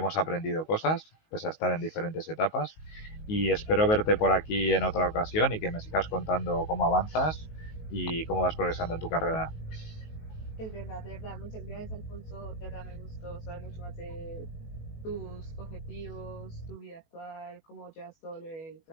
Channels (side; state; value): right; late; 19 ms